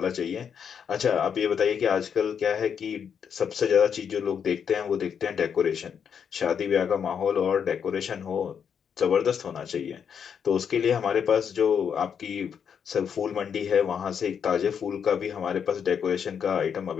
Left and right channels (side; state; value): right; quieter; 7.4 dB